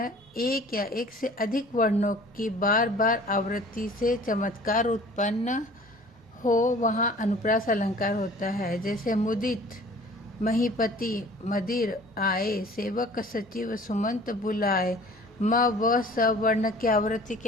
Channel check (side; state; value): both; normal; correlation 0.48